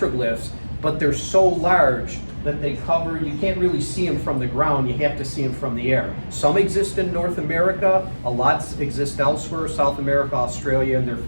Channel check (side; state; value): both; inverted; correlation -1.00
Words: but they're so large that they cover, you can't really see them from the ground, you have to see them from the air. Some exist in North America, a lot exist elsewhere, South America, Australia, and they're